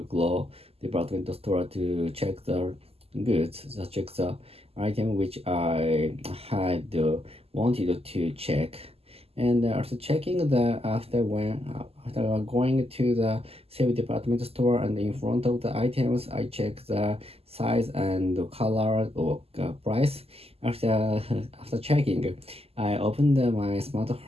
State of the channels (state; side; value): late; left; 0.29 ms